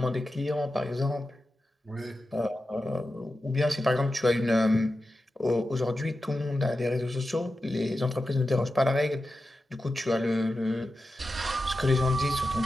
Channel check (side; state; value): both; normal; correlation 0.91